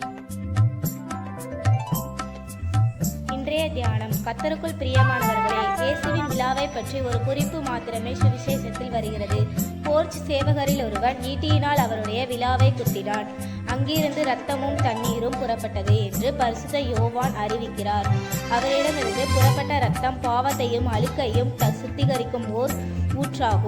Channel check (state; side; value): identical; both; correlation 1.00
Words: இன்றைய தியானம். கர்த்தருக்குள் பிரியமானவர்களே, இயேசுவின் விழாவை பற்றி ஒரு குறிப்பு மாத்திரமே சுவிசேஷத்தில் வருகிறது. போர்ச் சேவகரில் ஒருவன் ஈட்டியினால் அவருடைய விழாவை குத்தினான். அங்கிருந்து இரத்தமும் தண்ணீரும் புறப்பட்டது என்று பரிசுத்த யோவான் அறிவிக்கிறார். அவரிடமிருந்து புறப்பட்ட இரத்தம் பாவத்தையும் அழுக்கையும் சுத்திகரிக்கும் ஓர்